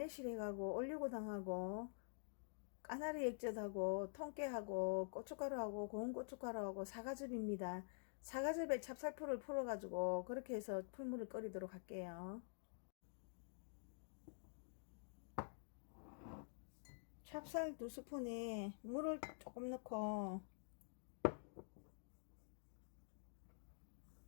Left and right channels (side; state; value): right; silent; digital silence